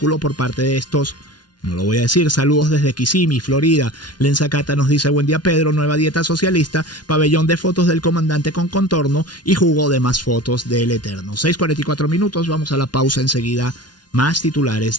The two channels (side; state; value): right; late; 0.70 ms